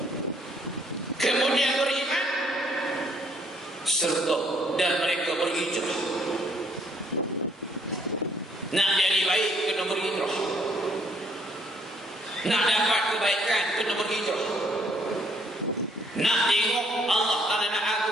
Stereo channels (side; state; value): both; normal; correlation 0.65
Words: Kemudian beriman serta dan mereka berhijrah. Nak jadi baik kena berhijrah. Nak dapat kebaikan kena berhijrah. Nak tengok Allah Ta'ala nak